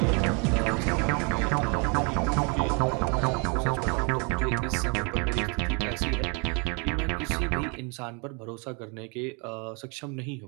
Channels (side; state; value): left; quieter; 33.5 dB